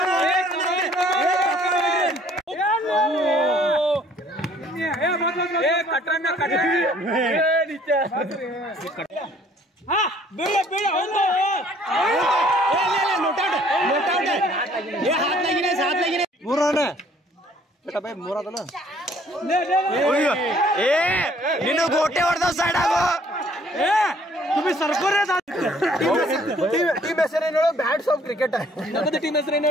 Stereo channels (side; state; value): both; normal; correlation 0.59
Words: ನೀನು ಗೋಟೆ ಹೊಡೆದ ಸೈಡ್ ಆಗೋ. ಟೀಮ್ ಹೆಸರೇನು? Bats of cricket. ನಮ್ಮದು ಟೀಮ್